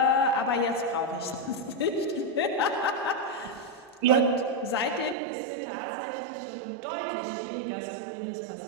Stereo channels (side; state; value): left; drops out; at 5.2 s